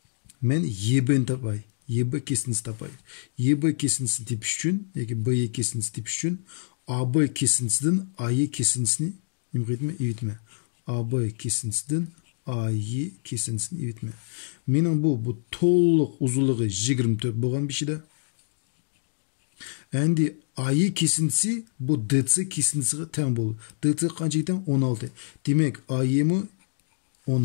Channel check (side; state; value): right; silent; digital silence